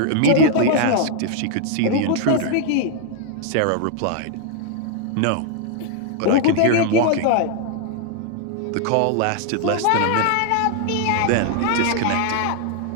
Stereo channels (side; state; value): both; different; correlation 0.00